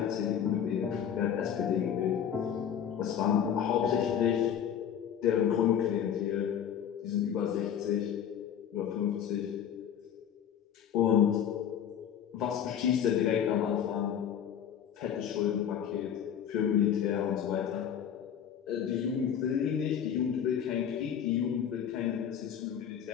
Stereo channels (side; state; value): right; quieter; 9.0 dB